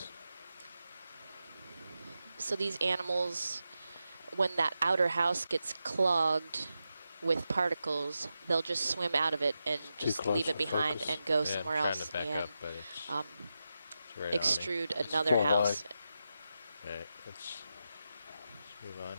So these animals, when that outer house gets clogged with particles, they'll just swim out of it and just close leave it for behind focus. and go Yeah, somewhere I'm trying else to back and up, but it's right on me. extrude It's another more house. All right, let's move on.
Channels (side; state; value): both; inverted; correlation -0.90